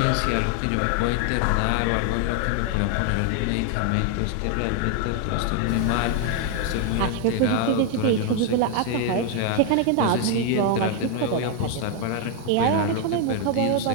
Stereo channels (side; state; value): both; different; correlation 0.00